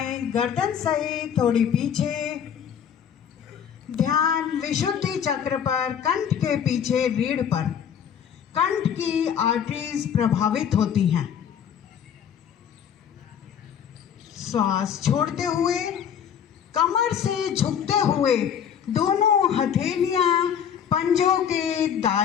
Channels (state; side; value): quieter; right; 8.4 dB